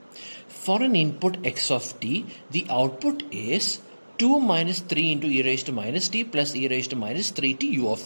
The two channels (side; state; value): both; inverted; correlation -1.00